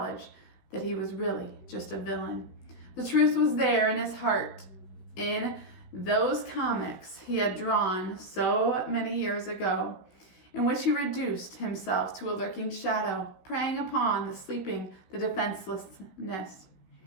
that he was really just a villain. The truth was there in his heart, in those comics he had drawn so many years ago, in which he reduced himself to a lurking shadow, preying upon the sleeping, the defenselessness.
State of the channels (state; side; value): late; right; 16 ms